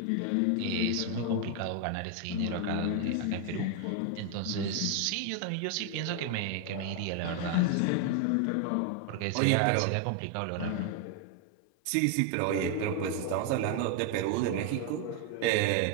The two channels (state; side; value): different; both; correlation 0.01